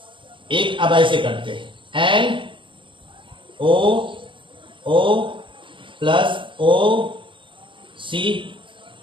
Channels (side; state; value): left; late; 0.24 ms